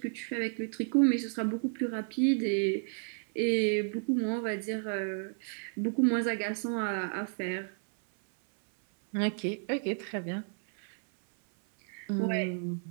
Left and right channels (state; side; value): silent; left; 57 dB below the other